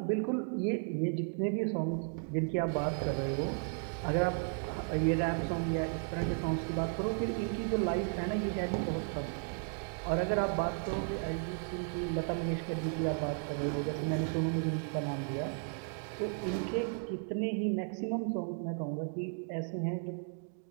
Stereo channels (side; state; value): left; silent; 55 dB below the other